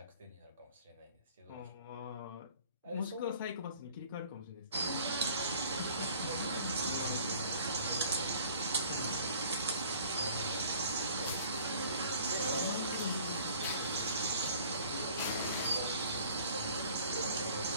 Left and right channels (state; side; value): inverted; both; correlation -0.52